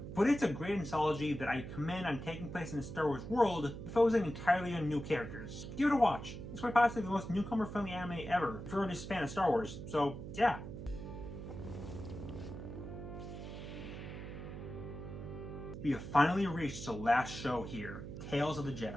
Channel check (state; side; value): noise; right; hum, 9 dB below the sound